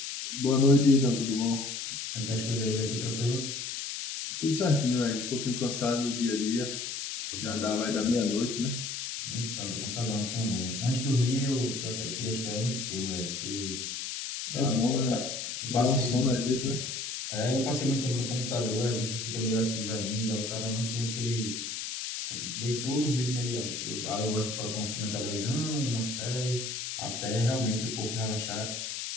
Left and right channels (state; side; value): noise; left; hiss, 5 dB below the sound